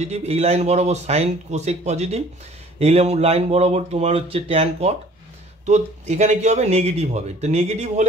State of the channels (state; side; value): normal; both; correlation 0.52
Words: এই লাইন বরাবর সাইন কোসেক পজিটিভ, এই লাইন বরাবর তোমার হচ্ছে ট্যান কট। তো এখানে কি হবে নেগেটিভ হবে, তো নেগেটিভ